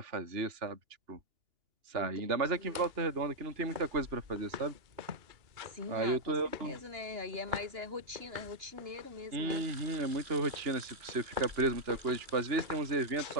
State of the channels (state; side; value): late; left; 2.8 ms